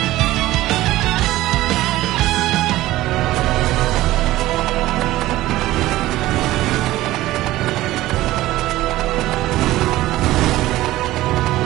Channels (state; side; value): quieter; left; 16.4 dB